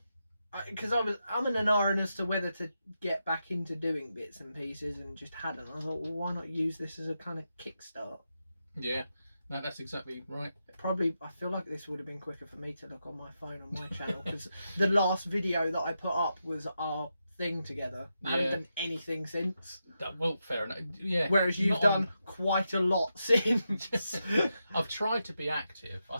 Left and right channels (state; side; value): inverted; both; correlation -0.86